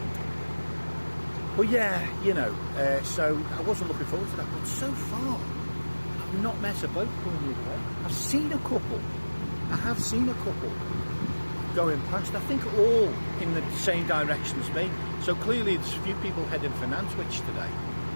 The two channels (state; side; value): inverted; both; correlation -1.00